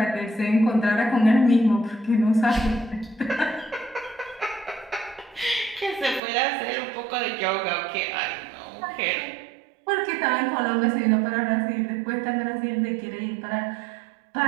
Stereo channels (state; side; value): drops out; left; at 6.2 s